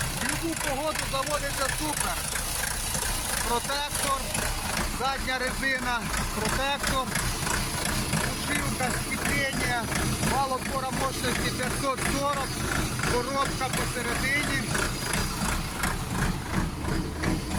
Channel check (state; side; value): identical; both; correlation 1.00